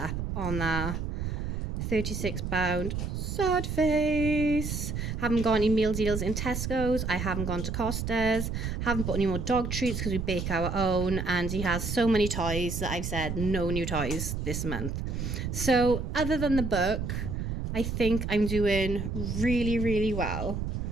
on that. £36 sod face. Haven't got any meal deals in Tesco's. I haven't gone to Costa's. Haven't bought any more dog treats because we bake our own, and he has so many toys that I've said no new toys this month. So other than the book, I think I'm doing really, really well.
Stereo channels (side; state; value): right; noise; rumble, 3 dB below the sound